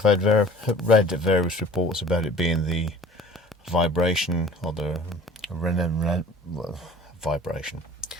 read various reports about it being the vibration or the vibration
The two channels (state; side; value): normal; both; correlation 0.45